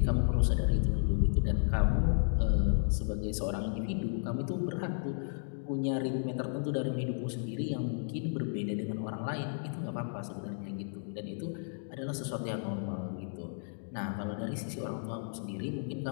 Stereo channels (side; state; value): right; silent; digital silence